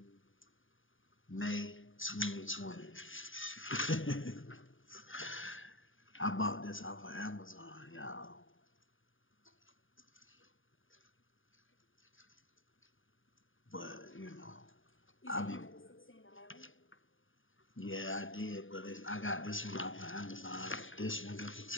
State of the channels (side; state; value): right; late; 0.58 ms